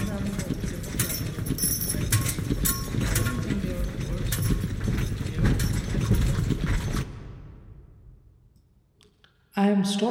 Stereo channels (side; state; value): both; identical; correlation 1.00